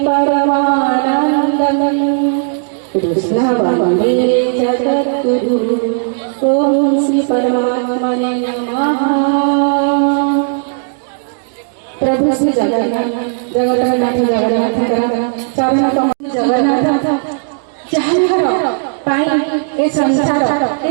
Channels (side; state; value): left; silent; digital silence